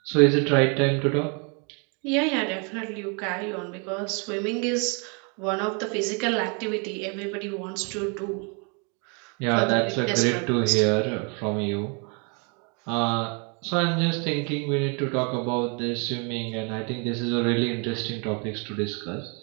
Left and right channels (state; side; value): quieter; left; 35.4 dB